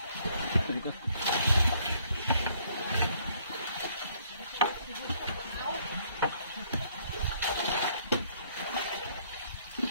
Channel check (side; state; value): both; inverted; correlation -0.64